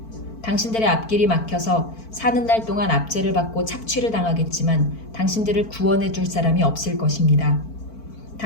당신들의 앞길이 막혀서 사는 날 동안 압제를 받고 착취를 당하겠지만 당신들을 구원해 줄 사람이 없을 것입니다.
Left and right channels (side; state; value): right; late; 4.5 ms